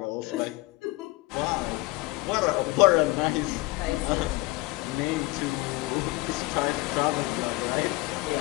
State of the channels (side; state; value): right; quieter; 21.4 dB